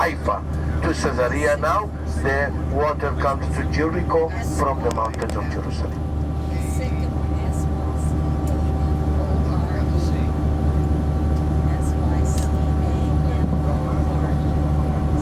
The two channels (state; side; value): identical; both; correlation 1.00